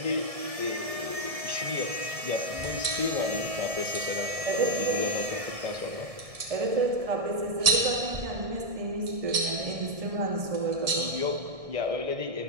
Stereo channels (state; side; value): late; left; 1.6 ms